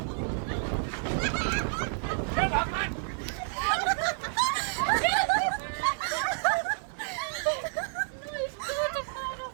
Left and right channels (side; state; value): left; silent; 57 dB below the other